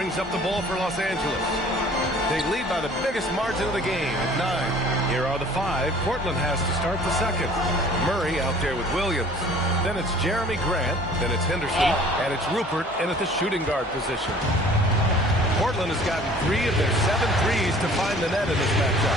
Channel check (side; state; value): both; normal; correlation 0.50